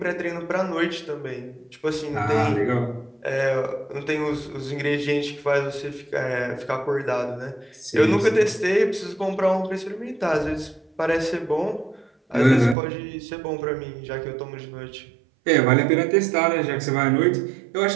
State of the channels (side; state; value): left; drops out; at 12.8 s